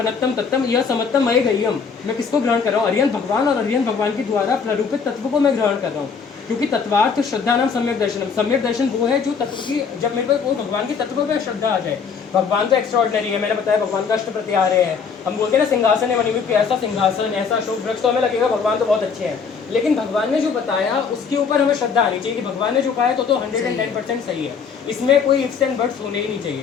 तत्तम यह समत्तम मय गय्यम। मैं किसको ग्रहण कर रहा हूँ? अरिहंत भगवान, और अरिहंत भगवान के द्वारा प्ररूपित तत्व को मैं ग्रहण कर रहा हूँ। क्योंकि तत्वार्थ श्रद्धा नाम सम्यक दर्शनम। सम्यक दर्शन वो है जो तत्व की, जब मेरे को कोई भगवान के तत्व पे श्रद्धा आ जाए। भगवान तो एक्स्ट्राऑर्डिनरी है, मैंने बताया भगवान का अष्ट प्रत्याहार्य है। हम बोलते हैं ना सिंहासन है मणिमुख, ऐसा सिंहासन, ऐसा अशोक वृक्ष, तो हमें लगेगा भगवान तो बहुत अच्छे हैं। लेकिन भगवान ने जो बताया उसके ऊपर हमें श्रद्धा आनी चाहिए कि भगवान ने जो कहा है तो 110% सही है, इसमें कोई इफ्स एंड बट्स होने ही नहीं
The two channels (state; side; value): quieter; right; 5.9 dB